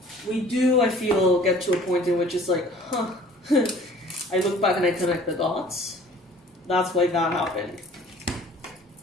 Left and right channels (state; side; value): normal; both; correlation 0.51